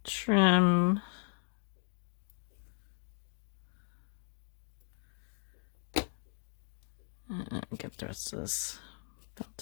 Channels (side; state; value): right; silent; 54 dB below the other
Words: trim. And get the rest of this